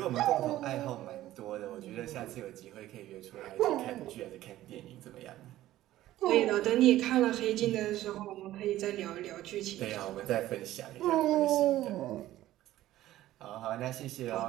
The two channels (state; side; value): quieter; left; 14.6 dB